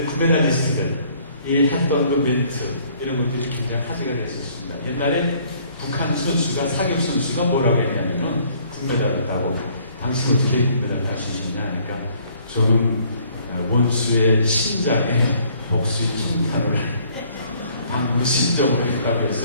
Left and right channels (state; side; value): inverted; both; correlation -0.61